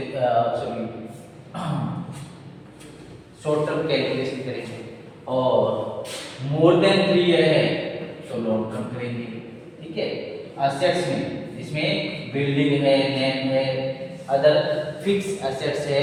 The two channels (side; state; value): both; identical; correlation 1.00